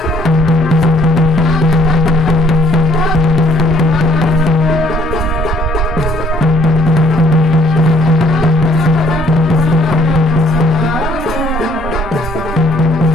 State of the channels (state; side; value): normal; both; correlation 0.62